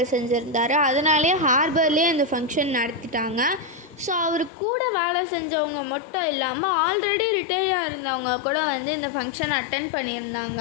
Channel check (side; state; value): right; drops out; at 4.5 s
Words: செஞ்சுருந்தார். அதனாலே ஹார்பர்லேயே இந்த ஃபங்க்ஷன் நடத்திட்டாங்க. ஸோ அவர் கூட வேலை செஞ்சவங்க மட்டும் இல்லாமல் ஆல்ரெடி ரிட்டையர்டாக இருந்தவங்க கூட வந்து இந்த ஃபங்க்ஷன் அட்டென்ட்